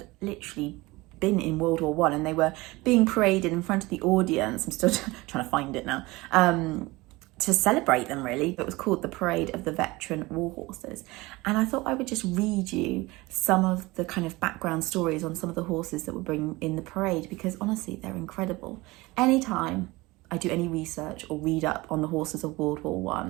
literally been in World War I, and they were being paraded in front of the audience. I'm still trying to find it now. To celebrate them, really. It was called the Parade of the Veteran War Horses. And I thought I would just read you some of the kind of background stories on some of the horses that were bringing in the parade, because honestly, they're incredible. Anytime I do any research or read up on the horses of World War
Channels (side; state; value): left; quieter; 21.6 dB